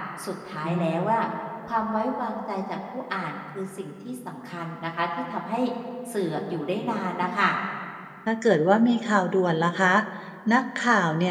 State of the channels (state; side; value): identical; both; correlation 1.00